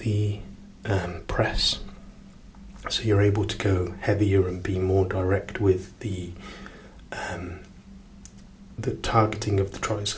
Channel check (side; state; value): both; identical; correlation 1.00